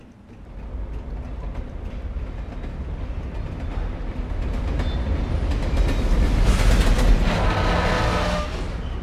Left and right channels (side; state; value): both; identical; correlation 1.00